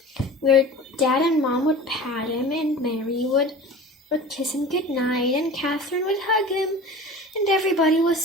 where Dad and Mom would pat him, and Mary would kiss him goodnight, and Catherine would hug him, and everybody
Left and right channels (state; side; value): normal; both; correlation 0.37